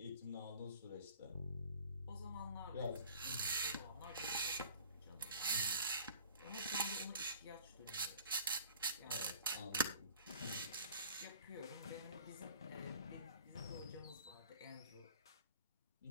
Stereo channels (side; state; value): both; inverted; correlation -0.46